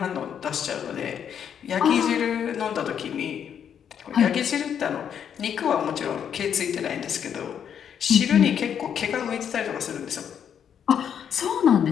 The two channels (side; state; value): right; quieter; 8.4 dB